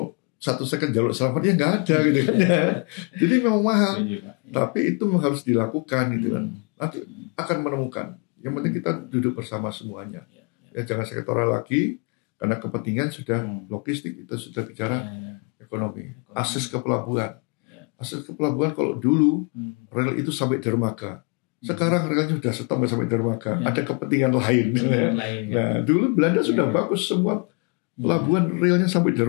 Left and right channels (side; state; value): right; quieter; 34.7 dB